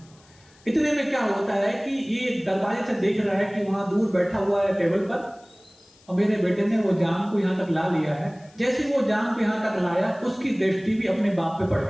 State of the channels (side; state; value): left; noise; hiss, 29 dB below the sound